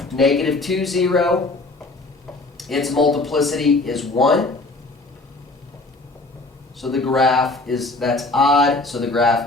Negative 2, 0, its multiplicity is 1. So the graph that's odd, so the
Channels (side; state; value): right; quieter; 3.1 dB